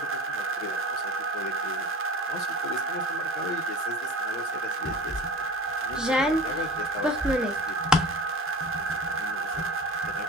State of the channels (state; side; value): normal; both; correlation 0.37